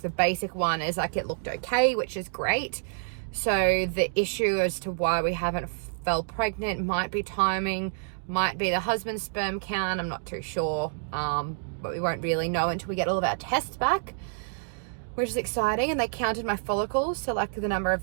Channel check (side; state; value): left; silent; digital silence